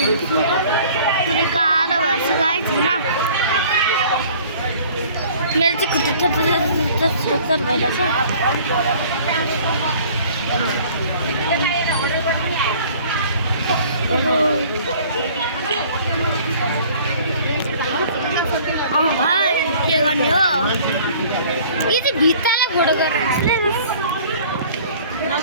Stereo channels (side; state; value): both; inverted; correlation -0.51